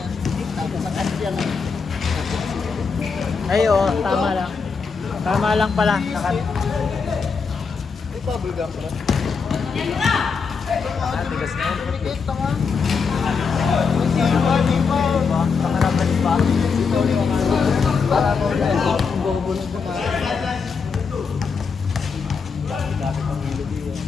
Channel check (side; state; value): right; quieter; 5.4 dB